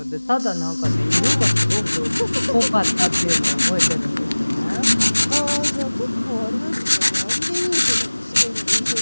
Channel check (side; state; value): both; inverted; correlation -1.00